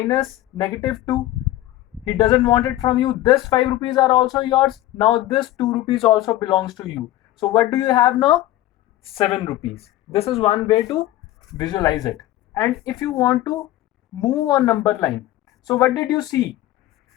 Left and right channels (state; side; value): quieter; right; 15.0 dB